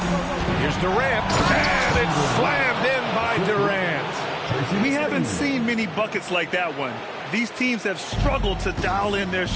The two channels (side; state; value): both; identical; correlation 1.00